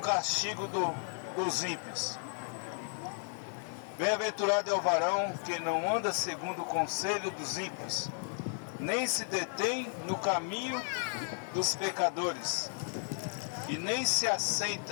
dos ímpios. Bem-aventurado é o varão que não anda segundo o conselho dos ímpios, nem se detém no caminho dos pecadores, e nem se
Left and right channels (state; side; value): silent; right; 55 dB below the other